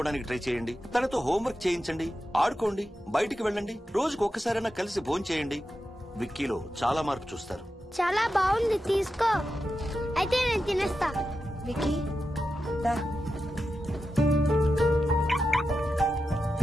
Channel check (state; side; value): normal; both; correlation 0.90